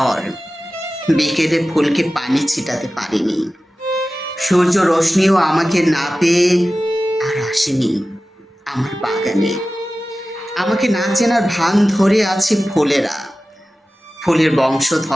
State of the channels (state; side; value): normal; both; correlation 0.95